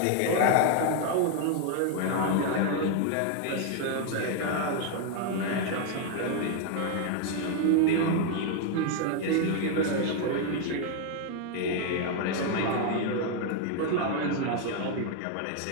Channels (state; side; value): different; both; correlation 0.00